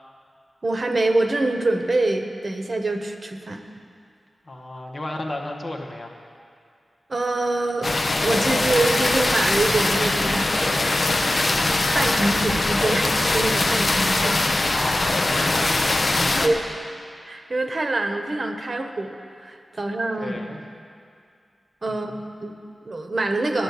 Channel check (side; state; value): both; normal; correlation 0.94